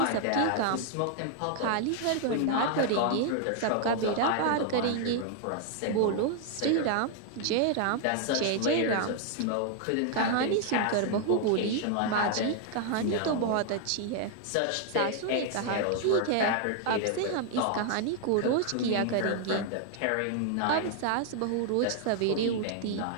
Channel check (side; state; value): both; different; correlation 0.00